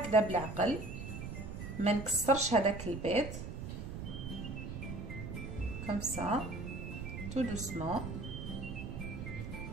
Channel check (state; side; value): noise; right; rumble, 7 dB below the sound